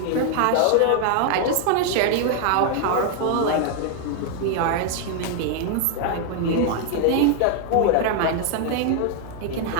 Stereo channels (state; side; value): different; both; correlation 0.00